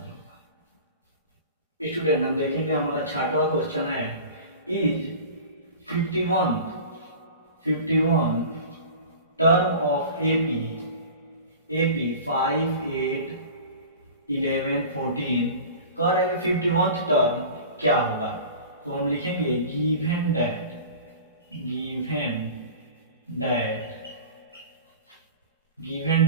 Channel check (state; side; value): inverted; both; correlation -0.38